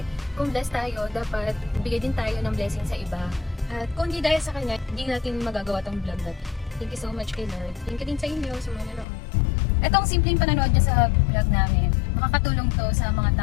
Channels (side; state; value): right; drops out; at 9.1 s